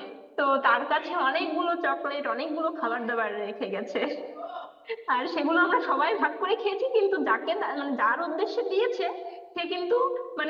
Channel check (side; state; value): both; identical; correlation 1.00